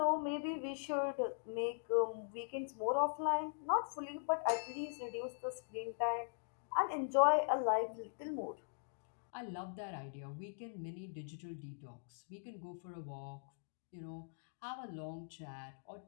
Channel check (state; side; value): silent; right; digital silence